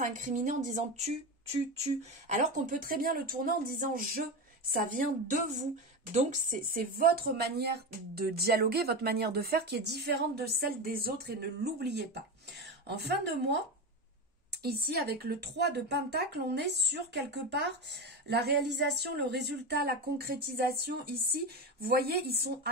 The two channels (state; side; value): normal; both; correlation 0.19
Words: incriminer en disant tu, alors qu'on peut très bien le tourner en disant je. Ça vient de vous. Donc, c'est votre manière de dialoguer, votre manière de faire qui est différente de celle des autres et ne l'oubliez pas. En fin de mois, ici, avec le 3 de Pentacle, on est sur quelque part la réalisation, le résultat, la concrétisation. Ici, vous voyez, ils sont